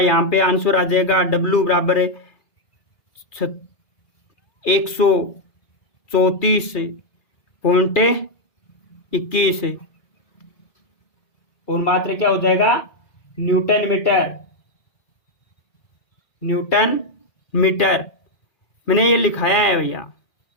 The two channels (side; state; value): right; late; 2.4 ms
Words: पे आंसर आ जाएगा W बराबर है 134.21 और मात्रा क्या हो जाएगा न्यूटन मीटर। न्यूटन मीटर मैंने ये लिखाया है भैया